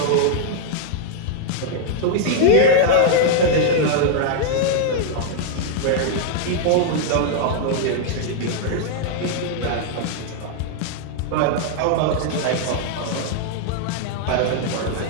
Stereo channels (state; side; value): different; both; correlation 0.00